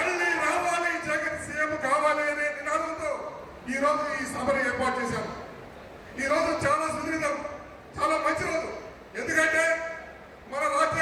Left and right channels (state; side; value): identical; both; correlation 1.00